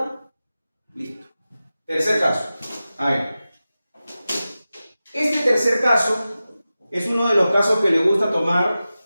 Listo. Tercer caso. A ver. Este tercer caso es uno de los casos que le gusta tomar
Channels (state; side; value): inverted; both; correlation -0.94